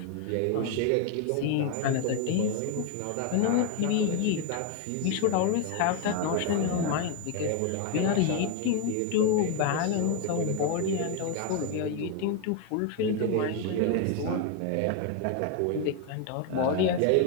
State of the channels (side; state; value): both; different; correlation 0.01